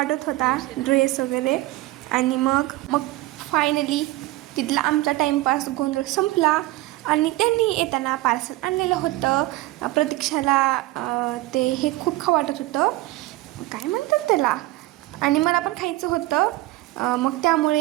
होता ड्रेस वगैरे. आणि मग फायनली तिथला आमचा टाईमपास गोंधळ संपला आणि त्यांनी येताना पार्सल आणलेलं होतं. प्रतीक्षाला ते हे खूप खावं वाटत होतं, काय म्हणतात त्याला, आणि मला पण खायचं होतं. मग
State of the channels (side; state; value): left; quieter; 18.3 dB